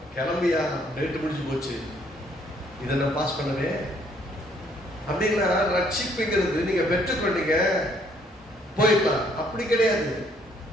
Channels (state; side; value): normal; both; correlation 0.65